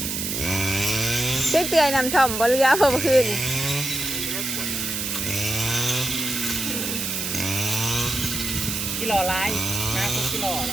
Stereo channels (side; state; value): right; noise; hiss, 3 dB below the sound